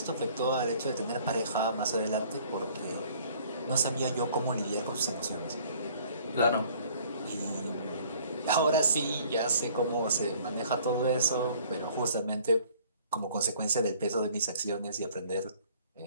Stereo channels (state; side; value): inverted; both; correlation -0.55